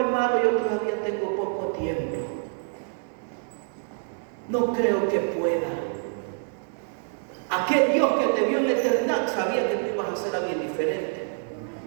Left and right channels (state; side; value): silent; left; 61 dB below the other